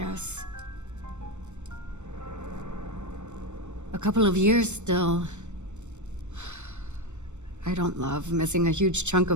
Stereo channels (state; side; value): late; left; 0.84 ms